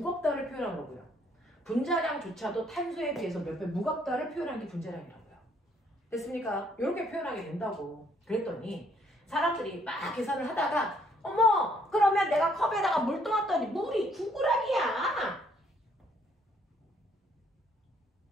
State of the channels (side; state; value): both; normal; correlation 0.67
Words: 표현한 거고요. 분자량조차도 탄소에 비해서 몇 배 무겁다를 표현한 게 분자량이라고요. 됐습니까? 이렇게 표현하게 된다고. 그랬더니 사람들이 막 계산을 하다가 어머, 그러면 내가 컵에다가 물 떠왔더니 물이 9g이야.